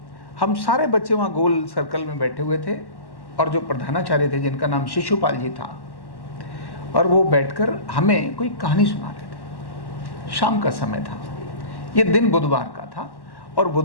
हम सारे बच्चे वहाँ गोल सर्कल में बैठे हुए थे, और जो प्रधानाचार्य थे जिनका नाम शिशुपाल जी था, और वो बैठकर हमें कोई कहानी सुना रहे थे। शाम का समय था, ये दिन बुधवार का था, और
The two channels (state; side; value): late; right; 1.1 ms